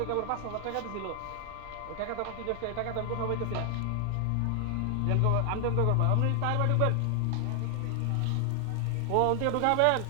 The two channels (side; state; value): both; different; correlation 0.00